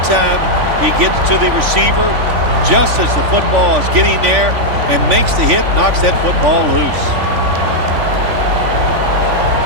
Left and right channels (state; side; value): late; left; 3.5 ms